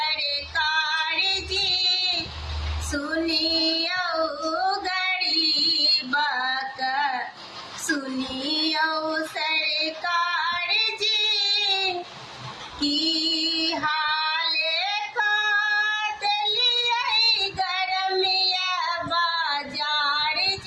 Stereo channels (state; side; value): identical; both; correlation 1.00